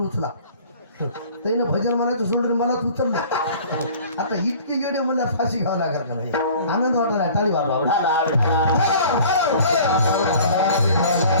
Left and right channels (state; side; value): inverted; both; correlation -0.48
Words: उचला. त्यानं भजन म्हणायचं सोडून मलाच उचललं. आता इतके येडे मला फाशी घ्यावं लागेल का नाही. आनंद वाटला टाळी वाजवा.